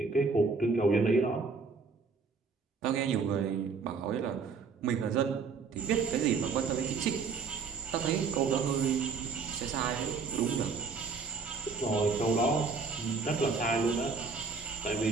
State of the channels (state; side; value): quieter; left; 4.9 dB